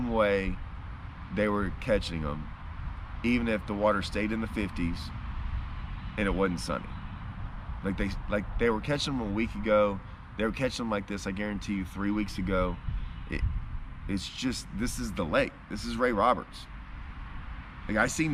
way they were catching them, even if the water stayed in the 50s and it wasn't sunny. Like they were catching them a week ago. They were catching them like this, I guarantee you, 3 weeks ago. It's just, this is the lake. This is Ray Roberts. Like I see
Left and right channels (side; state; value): both; identical; correlation 1.00